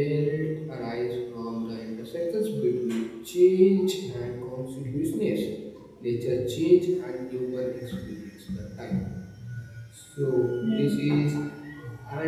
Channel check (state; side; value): identical; both; correlation 1.00